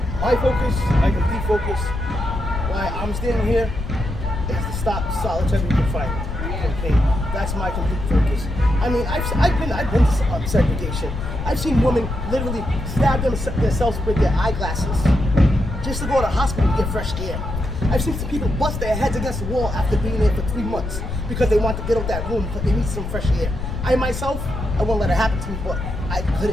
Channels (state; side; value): noise; left; rumble, 5 dB below the sound